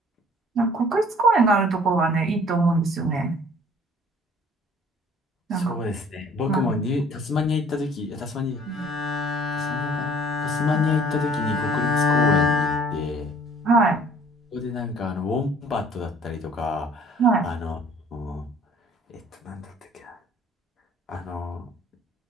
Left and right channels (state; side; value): normal; both; correlation 0.54